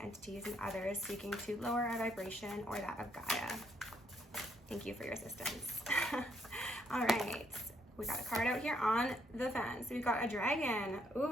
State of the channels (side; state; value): both; normal; correlation 0.72